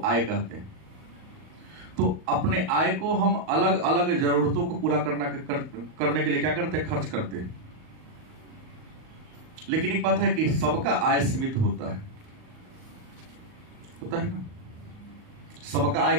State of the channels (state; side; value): late; left; 38 ms